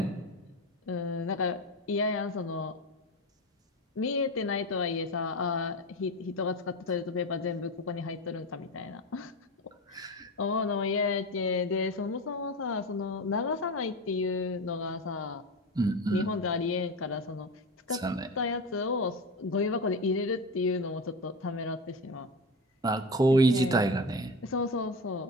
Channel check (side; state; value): both; normal; correlation 0.23